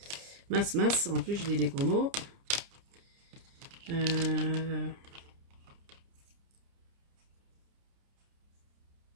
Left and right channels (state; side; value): late; left; 30 ms